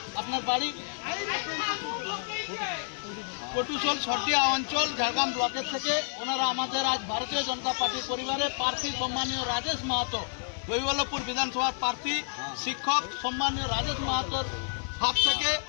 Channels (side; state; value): right; silent; digital silence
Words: আপনার বাড়ি কটুসল সরডিয়া অঞ্চল ঝাড়গ্রাম ব্লকের থেকে ওনারা আমাদের আজ ভারতীয় জনতা পার্টির পরিবারে প্রার্থী সম্মানীয় রাজেশ মাহাতো, কৈবল্যপুর বিধানসভার প্রার্থী শিক্ষক সম্মানীয় রাজেশ মাহাতোর হাত থেকে